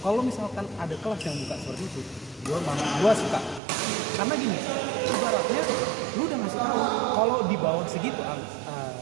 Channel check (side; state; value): left; drops out; at 3.6 s